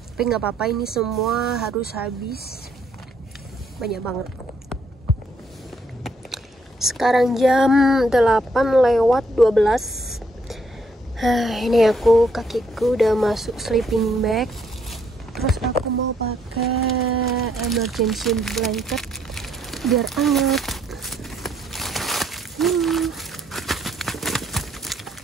tapi nggak apa-apa, ini semua harus habis, banyak banget. Sekarang jam 8:12. Ini kakiku udah masuk sleeping bag. Terus aku mau pakai emergency blanket biar hangat.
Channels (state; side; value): normal; both; correlation 0.70